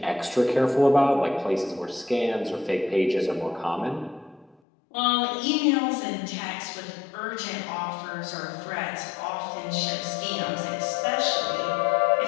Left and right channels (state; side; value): drops out; right; at 4.5 s